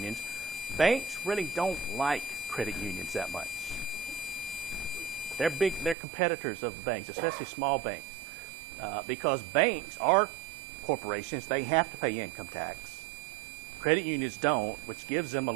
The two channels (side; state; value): left; drops out; at 6.0 s